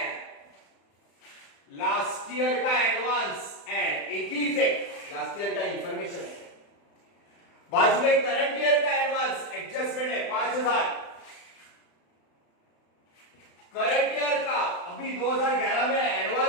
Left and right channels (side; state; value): right; late; 35 ms